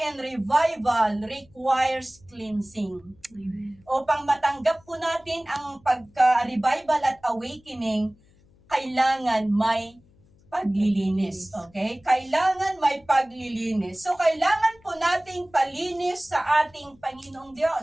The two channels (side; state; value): left; noise; hum, 30 dB below the sound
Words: revival requires cleansing. Upang matanggap po natin ang pagka-revival at awakening, kailangan may paglilinis. Okay? Kailangan may paglilinis. So, kailangan po nating palinis sa ating Panginoong